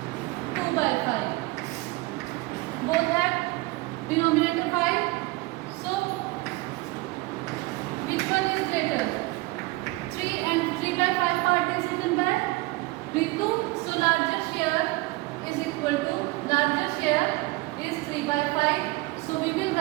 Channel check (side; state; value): left; quieter; 21.9 dB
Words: 2 by 5. Both have denominator 5. So which one is greater? 3 and 3 by 5 part is written by Ritu. So larger share is equal to, larger share is 3 by 5. So we will